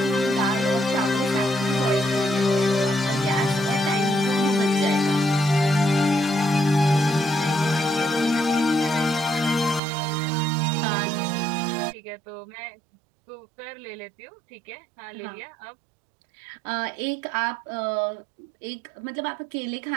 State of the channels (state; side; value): drops out; left; at 9.8 s